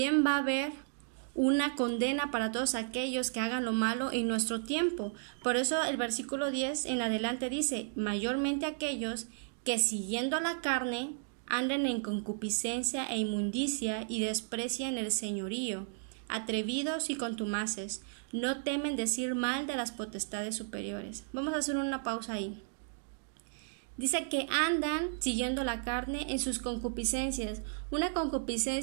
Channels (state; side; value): silent; left; digital silence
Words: va a haber una condena para todos aquellos que hagan lo malo en nuestro tiempo. Por eso el versículo 10 en adelante dice: mayormente aquellos que siguiendo la carne anden en concupiscencia e inmundicia y desprecian el señorío, atrevidos y contumaces. No temen decir mal de las potestades superiores. Vamos a hacer una pausa ahí. Dice que andan siguiendo la carne en sus concupiscencias. Una